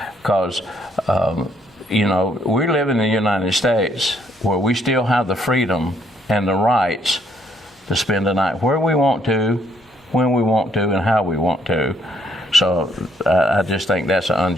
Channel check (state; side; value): normal; both; correlation 0.69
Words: because we live in the United States where we still have the freedom and the rights to spend the night where we want to, when we want to, and how we want to. So I just think that's an